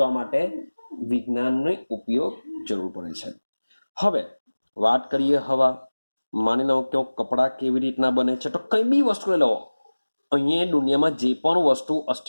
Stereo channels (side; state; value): both; inverted; correlation -1.00